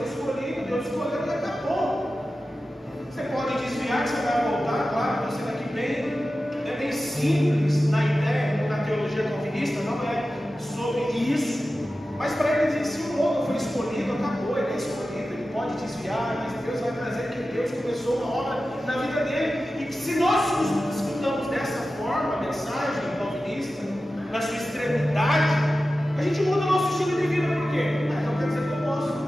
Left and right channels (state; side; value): normal; both; correlation 0.94